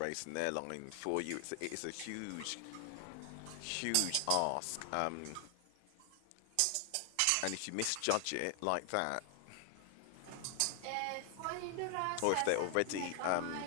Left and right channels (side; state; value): both; different; correlation 0.00